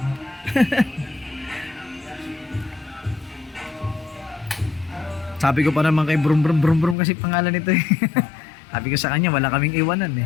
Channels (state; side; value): drops out; right; at 7.0 s